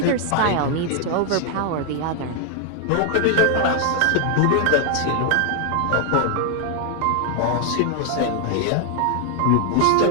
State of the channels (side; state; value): both; different; correlation 0.00